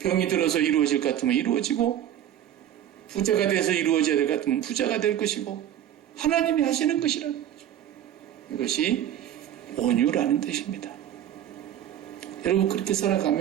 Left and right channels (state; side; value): quieter; left; 10.9 dB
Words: 들어서 이루어질 것 같으면 이루어지고 부자가 돼서 이루어져야 될 것 같으면 부자가 될 것이고 하나님이 하시는 것이라는 거죠. 이것이 온유라는 뜻입니다. 여러분 그렇게